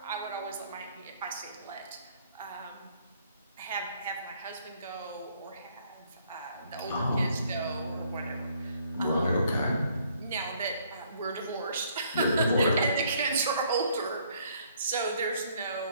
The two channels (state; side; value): inverted; both; correlation -0.65